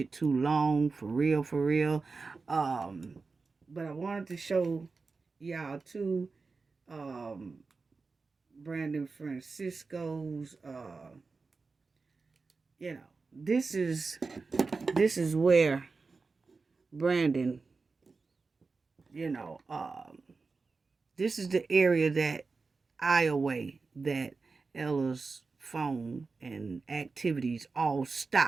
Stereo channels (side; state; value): left; quieter; 4.3 dB